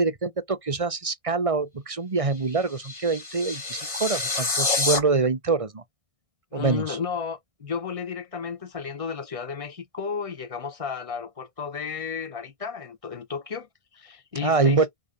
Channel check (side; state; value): left; late; 1.6 ms